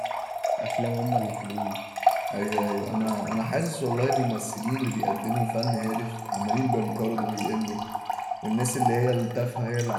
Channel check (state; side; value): identical; both; correlation 1.00